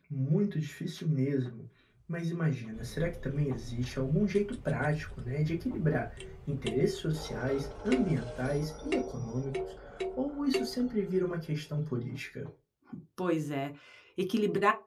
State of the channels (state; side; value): identical; both; correlation 1.00